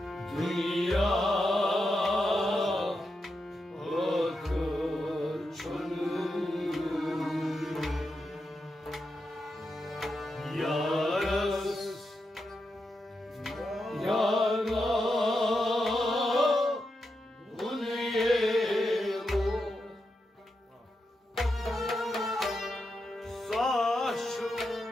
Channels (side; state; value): both; normal; correlation 0.86